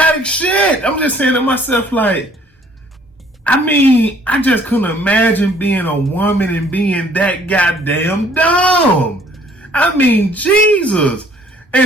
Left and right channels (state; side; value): normal; both; correlation 0.59